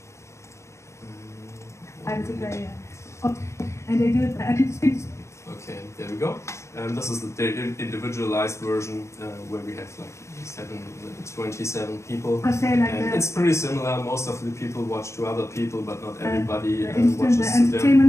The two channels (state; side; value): late; right; 0.14 ms